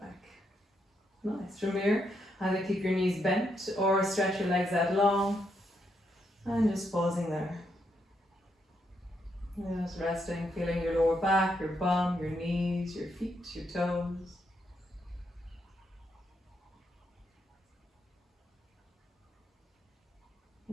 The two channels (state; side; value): normal; both; correlation 0.79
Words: Nice. From here, either keep your knees bent or stretch your legs out long, and just pausing there. Just resting, feeling your lower back, your bum, your knees, your feet, your toes.